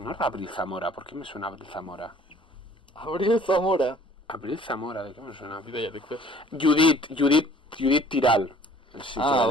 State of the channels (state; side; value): normal; both; correlation 0.53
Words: era Abril Zamora, ¿por qué me suena Abril Zamora? Abril Zamora. Abril Zamora, ¿de qué me suena? Judit Tiral. Sí,